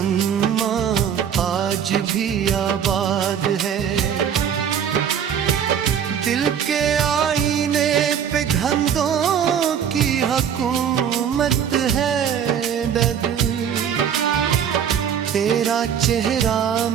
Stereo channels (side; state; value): left; quieter; 8.3 dB